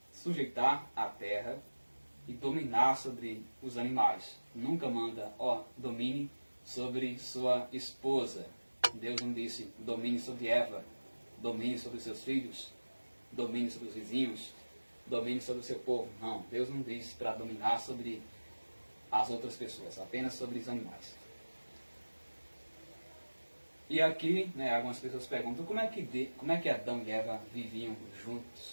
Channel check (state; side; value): inverted; both; correlation -1.00